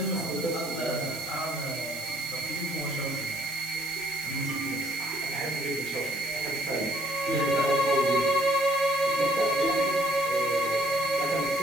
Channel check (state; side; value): noise; right; hiss, 12 dB below the sound